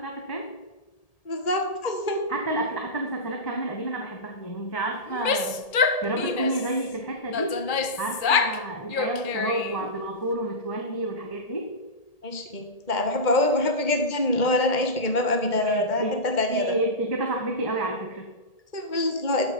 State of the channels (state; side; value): late; right; 1.8 ms